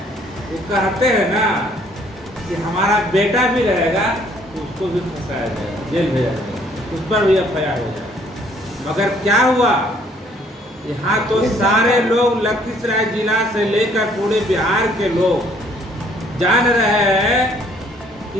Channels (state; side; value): normal; both; correlation 0.62